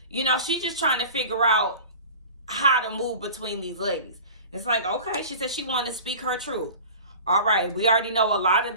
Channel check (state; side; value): inverted; both; correlation -0.39